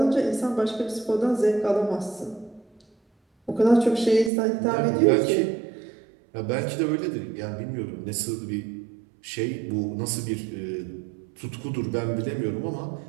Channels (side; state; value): left; drops out; at 4.3 s